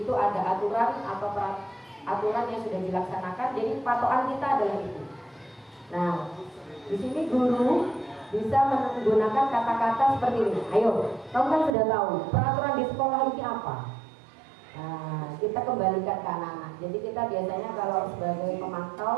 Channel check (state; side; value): drops out; left; at 11.8 s